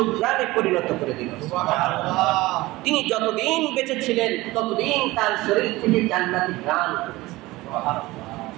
পরিণত করে দিল। সুবহানাল্লাহ। তিনি যতদিন বেঁচে ছিলেন ততদিন তার শরীর থেকে জান্নাতি ঘ্রাণ করেছে। সুবহানাল্লাহ।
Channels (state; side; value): quieter; left; 19.6 dB